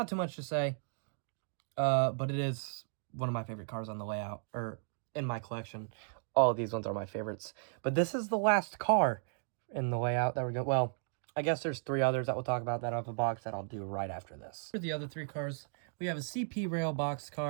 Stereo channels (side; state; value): left; silent; digital silence